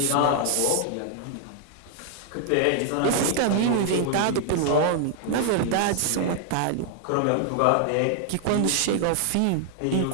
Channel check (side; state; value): both; different; correlation 0.00